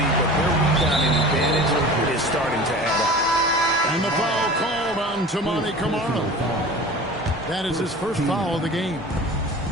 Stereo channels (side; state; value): both; normal; correlation 0.38